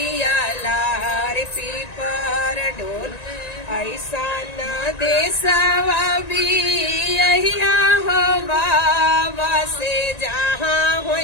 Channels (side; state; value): right; late; 1.9 ms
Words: लार पीपर डोल। ऐसा न देसवा भी यहिया हो बाबा, से जहाँ